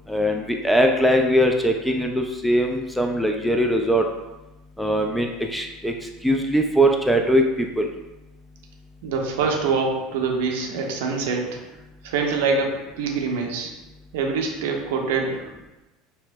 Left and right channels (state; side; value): normal; both; correlation 0.52